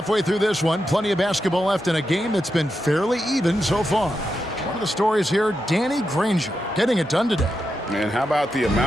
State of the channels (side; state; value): both; normal; correlation 0.87